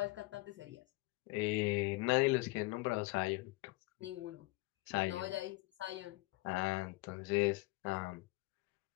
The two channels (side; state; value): right; quieter; 22.1 dB